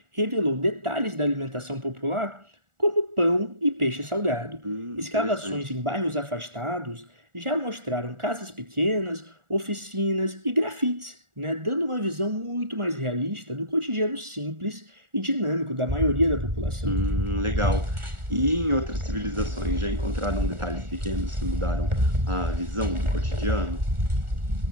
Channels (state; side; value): late; left; 1.4 ms